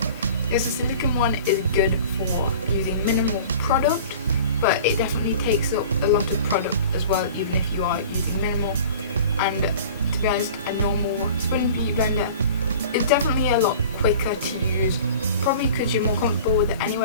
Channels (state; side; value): inverted; both; correlation -0.42